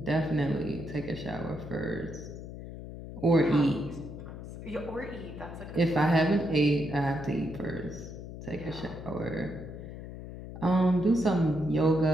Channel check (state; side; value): noise; left; hum, 11 dB below the sound